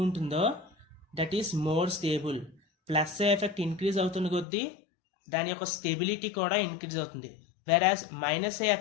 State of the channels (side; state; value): right; drops out; at 4.5 s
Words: ఉంటుందో that is more stable. Plus effect increase అవుతున్న కొద్దీ దాని యొక్క స్టెబిలిటీ కూడా ఇంక్రీజ్ అవుతుంది. వెరాజ్ మైనస్